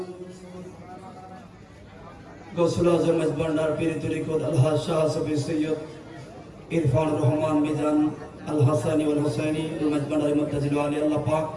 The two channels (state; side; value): identical; both; correlation 1.00